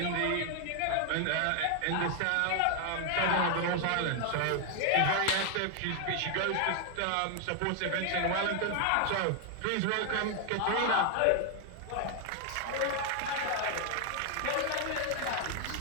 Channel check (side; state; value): both; different; correlation 0.00